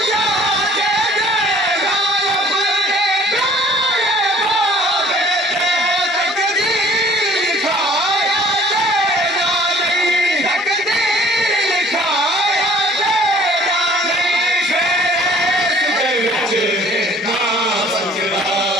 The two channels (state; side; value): normal; both; correlation 0.53